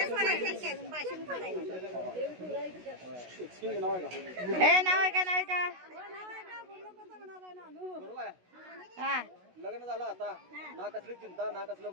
नाव आहे का हे नाव आहे का नाव आहे का बरोबर आहे हा लग्न झालं आता ना कसली चिंता ना कसलं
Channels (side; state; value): left; late; 16 ms